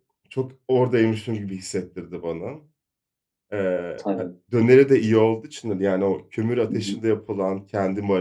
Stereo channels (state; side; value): identical; both; correlation 1.00